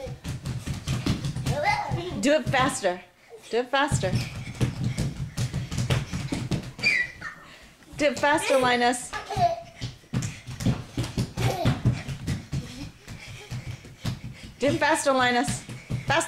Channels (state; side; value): identical; both; correlation 1.00